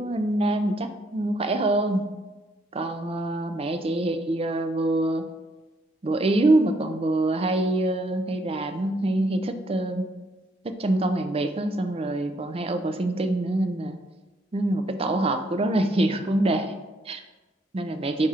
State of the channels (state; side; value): normal; both; correlation 0.71